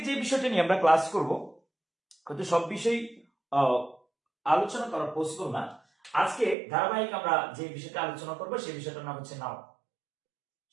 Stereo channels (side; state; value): left; drops out; at 6.6 s